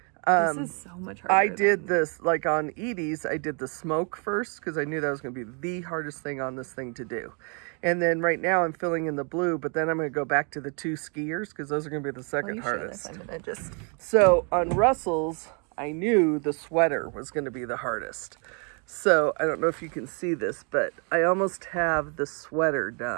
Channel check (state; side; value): quieter; left; 37.0 dB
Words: this is so much harder. I did this, like on Edie's, I did the smoke first because I knew that was going to be the hardest thing on this thing to do. And then right now I'm filling in the blue, but then I'm going to go back to the 2 skiers because those are going to be the second hardest. I'm gonna just... So on Russell's, I knew the sweater was going to be the hardest. So I don't know if you can see this, but I almost have the sweater